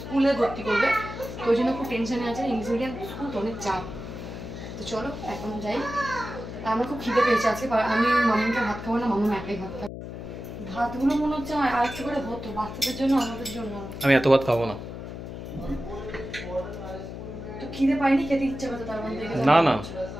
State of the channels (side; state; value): left; noise; hum, 9 dB below the sound